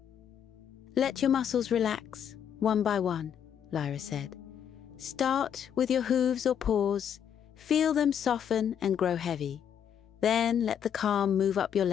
"Let your muscles relax, one by one," Lyra said. "Start with your hooves or paws, feel them soften and grow heavy. Then let the calm move up your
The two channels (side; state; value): right; quieter; 8.7 dB